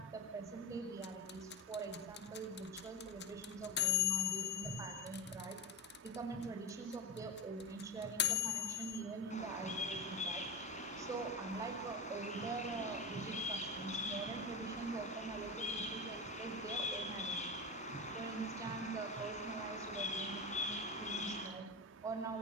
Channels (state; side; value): normal; both; correlation 0.25